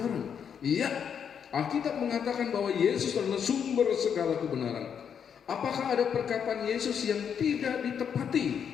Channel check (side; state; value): right; quieter; 7.7 dB